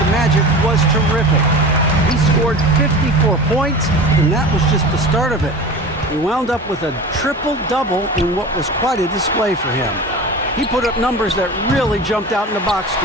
Magic was terrific. He scored 54 points, and that was just the start of it. He wound up with a triple-double in what was quite a display for him. He put up numbers that really jumped out in the box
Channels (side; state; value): both; normal; correlation 0.33